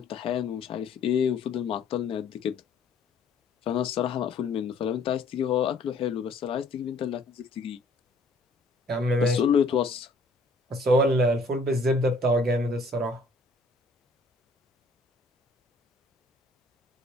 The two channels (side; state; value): right; quieter; 3.0 dB